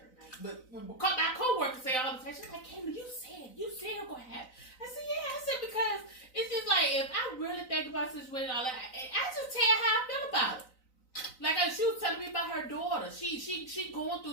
name, but my co-workers say all the time, she's like, Kayla, you said it gonna happen. I said, yeah, because it's just like, if I really think about situations, all that, I just tell how I feel about it. Like she was telling me about her daughter. She going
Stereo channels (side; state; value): right; late; 3.9 ms